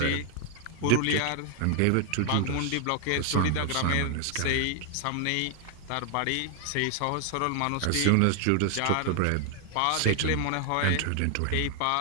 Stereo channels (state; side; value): different; both; correlation 0.00